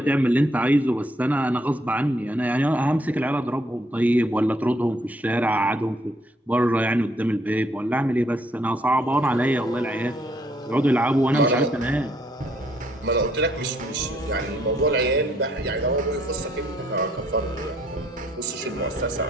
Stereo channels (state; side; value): normal; both; correlation 0.68